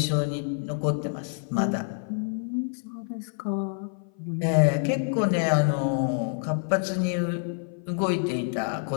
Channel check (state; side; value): silent; right; 57 dB below the other